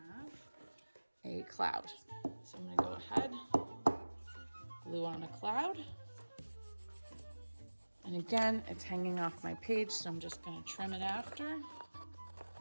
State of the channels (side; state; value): both; inverted; correlation -1.00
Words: a cloud. So I'm gonna go ahead, glue on a cloud. And again, it's hanging off my page, so I'm just gonna trim it after.